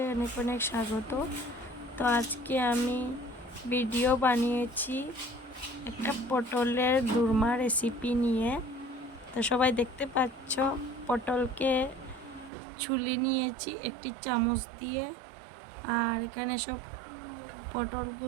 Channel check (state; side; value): drops out; left; at 12.5 s